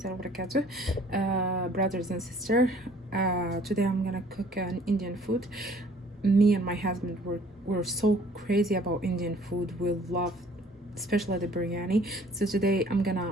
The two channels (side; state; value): both; normal; correlation 0.55